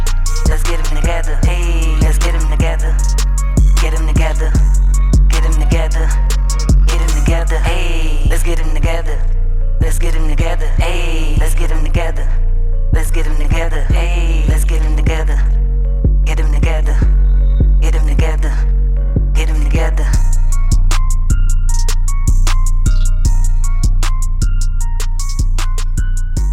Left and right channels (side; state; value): both; identical; correlation 1.00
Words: Let's get them together. Hey.